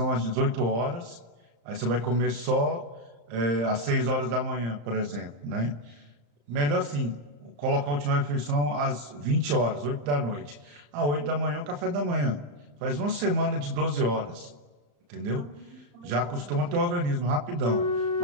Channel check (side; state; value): left; late; 35 ms